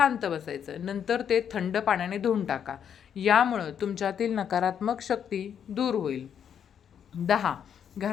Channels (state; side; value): quieter; right; 8.4 dB